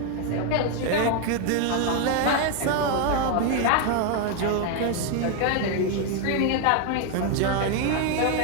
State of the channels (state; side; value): different; both; correlation 0.01